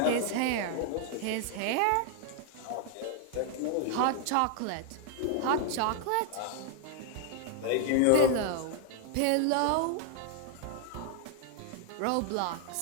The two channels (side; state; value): both; different; correlation 0.00